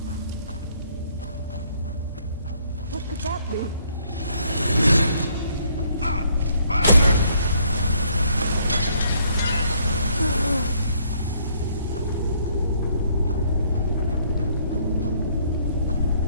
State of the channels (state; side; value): inverted; both; correlation -0.66